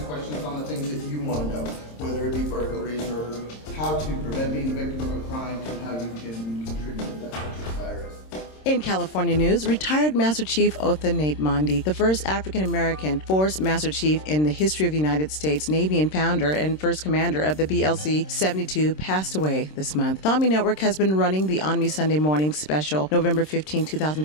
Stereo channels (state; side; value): late; right; 26 ms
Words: questions on the things that you want to know, whether it be burglaries or how to prevent being a victim of a crime to how you can contribute to that virus. In California news, retired Master Chief Otha Nate Mondi, the first African-American Force Master Chief in the history of the United States Navy and founder and first commander of the BLC-72, passed away this month. The ONME Network has been running the ONME Sunday Morning Special, November 15,